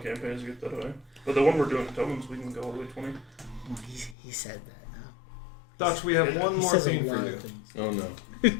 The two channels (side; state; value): right; drops out; at 4.2 s